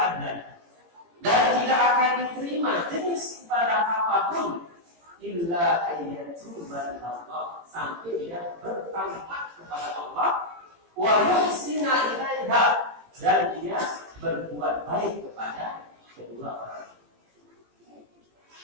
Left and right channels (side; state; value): left; late; 18 ms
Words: adlan, dan tidak akan diterima jenis ibadah apapun illa ayyatuba ilallah, sampai dia bertaubat kepada Allah, wa yuhsina ilaiha, dan dia berbuat baik kepada kedua orang.